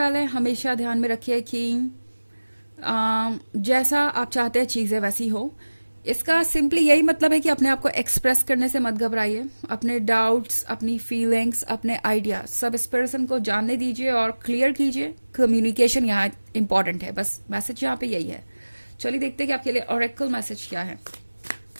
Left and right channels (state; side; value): inverted; both; correlation -1.00